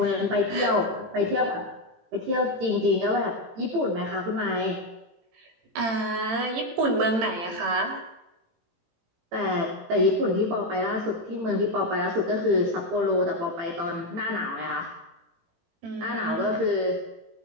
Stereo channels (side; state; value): left; late; 18 ms